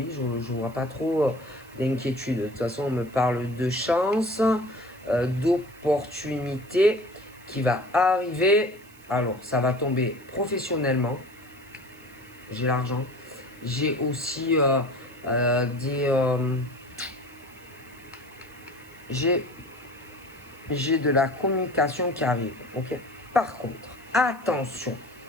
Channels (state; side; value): noise; right; hiss, 25 dB below the sound